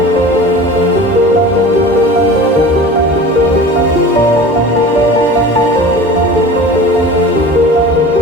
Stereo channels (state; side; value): normal; both; correlation 0.37